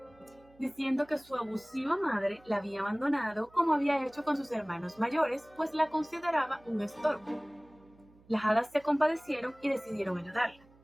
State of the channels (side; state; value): right; noise; hum, 28 dB below the sound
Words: diciendo que su abusiva madre la había abandonado como había hecho con sus hermanos mayores, pues la consideraba un estorbo. Las hadas se compadecieron y decidieron ayudarla,